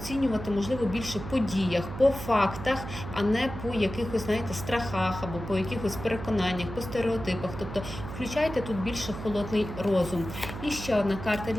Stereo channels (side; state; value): right; noise; hum, 9 dB below the sound